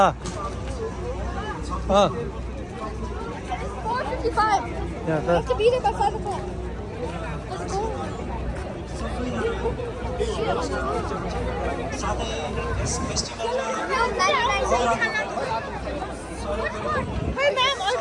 啊。4:55. Yeah, We have to be there by 5 o'clock. Let's go. Hey ma'am,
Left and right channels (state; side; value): identical; both; correlation 1.00